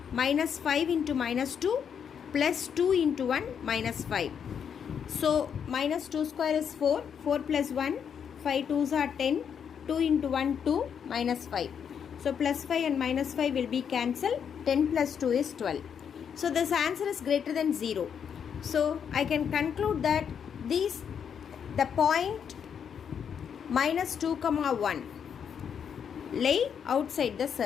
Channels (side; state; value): right; quieter; 7.6 dB